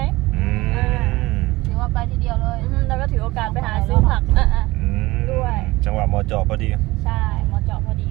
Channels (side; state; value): left; quieter; 20.2 dB